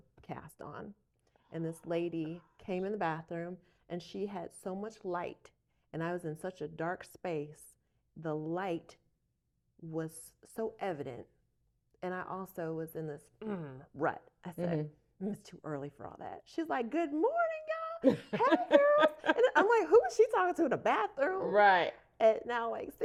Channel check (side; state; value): both; identical; correlation 1.00